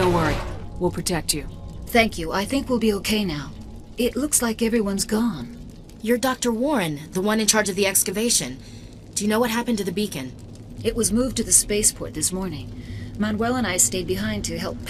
worry. We'll protect you. Thank you. I think we'll be okay now. It looks like everyone's gone. You're Dr. Warren, the one in charge of the excavation. Do you know what happened to the beacon? It was moved to the spaceport this morning. Manuel and I stayed behind to help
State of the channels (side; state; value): both; identical; correlation 1.00